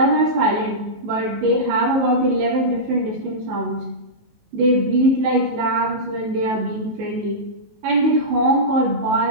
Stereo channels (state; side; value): late; left; 19 ms